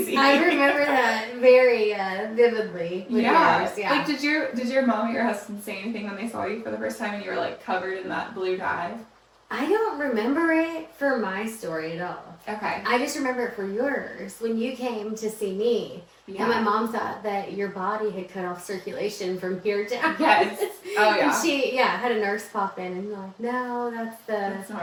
I remember that very vividly. Yeah. Like, did your mom or your husband say anything when they saw you for the first time and you were, like, covered in that blue dye? I don't remember it for my story at all. Okay. I just remember it for yours, when you came to see me. Yeah. And my mom thought that your body had cut off circulation from here down. Yes. Oh, yeah. And she, had a nurse pop in and like, no, that's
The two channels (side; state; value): both; identical; correlation 1.00